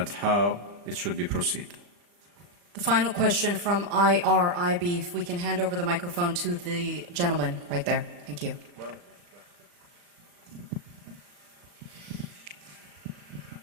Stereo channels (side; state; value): left; late; 40 ms